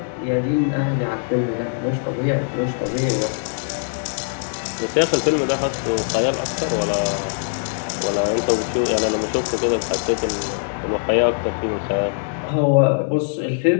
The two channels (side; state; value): right; silent; 58 dB below the other